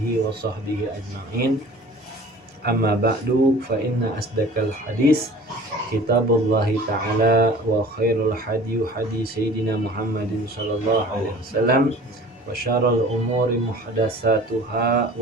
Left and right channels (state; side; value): normal; both; correlation 0.45